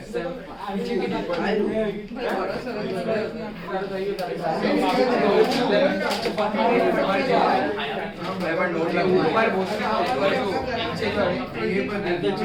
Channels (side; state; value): both; identical; correlation 1.00